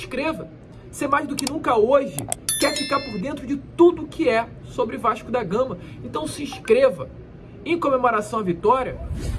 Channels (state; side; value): identical; both; correlation 1.00